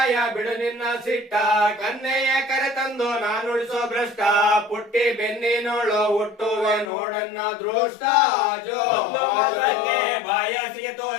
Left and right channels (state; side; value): drops out; right; at 6.9 s